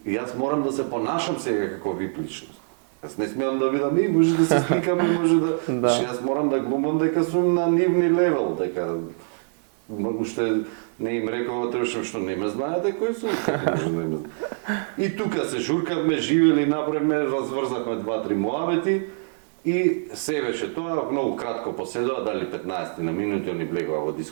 јас морам да се понашам сега како VIP личност. Јас не смеам да видам, може да се сликаме, може да... Јас морам да глумам дека сум на нивни левел, дека... Уште не им рекова, требаше што не ме знаете кој сум, како може да не ме знаете. И тука се журкавме, живели, направивме, разврзавме 2-3 муабети и се беше тоа, многу кратко поседува, дали 15 на минути, они влегува во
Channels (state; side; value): silent; left; digital silence